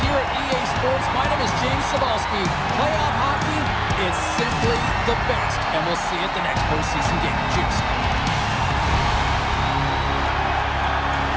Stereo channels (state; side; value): identical; both; correlation 1.00